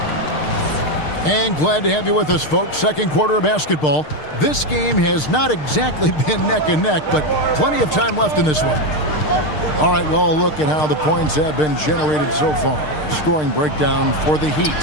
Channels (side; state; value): right; late; 6.6 ms